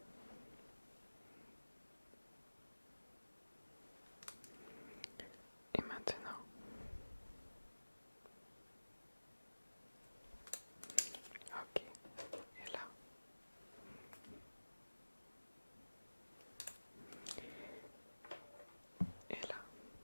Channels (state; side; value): inverted; both; correlation -1.00